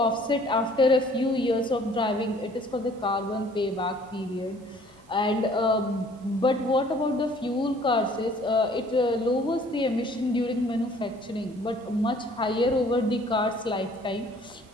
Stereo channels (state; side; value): normal; both; correlation 0.56